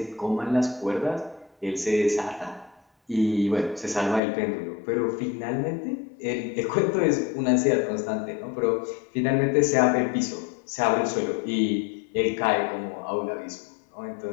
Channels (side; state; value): right; drops out; at 4.2 s